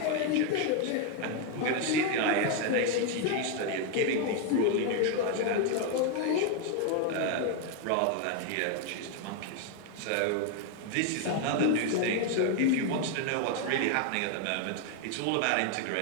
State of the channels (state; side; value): different; both; correlation 0.01